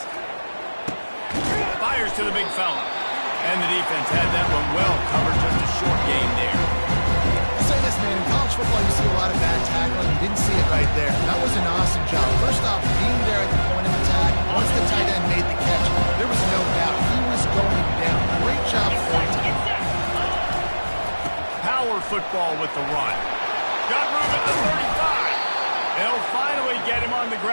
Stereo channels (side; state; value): both; inverted; correlation -1.00